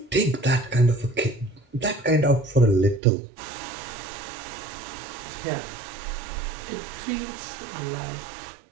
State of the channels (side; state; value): left; drops out; at 3.0 s